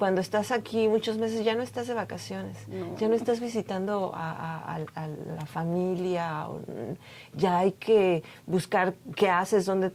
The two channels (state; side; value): identical; both; correlation 1.00